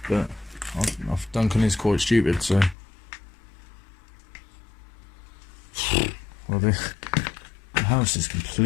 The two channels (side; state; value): right; drops out; at 2.8 s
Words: But Duncan is quite stupid, so. Well, the house is